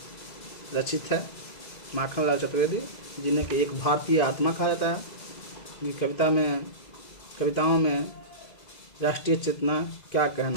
रचित है। माखनलाल चतुर्वेदी, जिन्हें कि एक भारतीय आत्मा कहा जाता है। ये कविताओं में राष्ट्रीय चेतना, क्या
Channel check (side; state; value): right; late; 2.0 ms